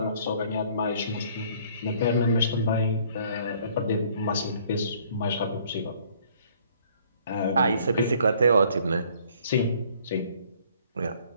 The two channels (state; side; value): inverted; both; correlation -0.59